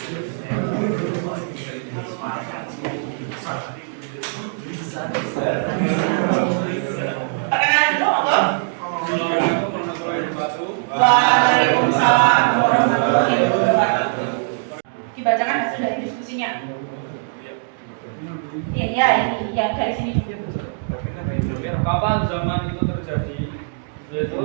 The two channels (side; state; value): left; silent; digital silence